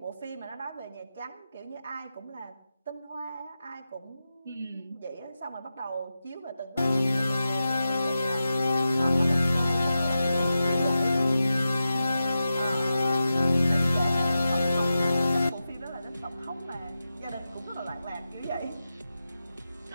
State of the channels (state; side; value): inverted; both; correlation -0.92